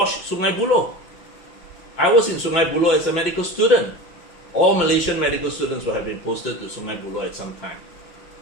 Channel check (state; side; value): late; right; 5.8 ms